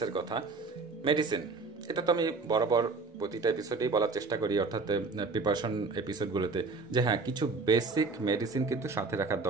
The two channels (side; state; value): left; quieter; 4.1 dB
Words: কথা। মেডিসিন, এটা তো আমি বরাবর প্রতিটা এপিসোডেই বলার চেষ্টা করি, অর্থাৎ প্রিপারেশন এপিসোডগুলোতে, যে হ্যাঁ, কিছু বেসিক মেডিসিন কিন্তু সাথে রাখার